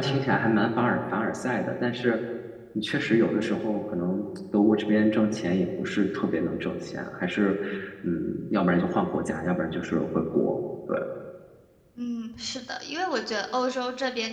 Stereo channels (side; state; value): both; identical; correlation 1.00